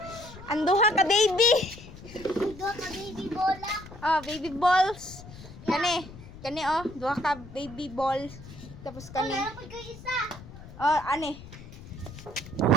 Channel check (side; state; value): left; noise; rumble, 16 dB below the sound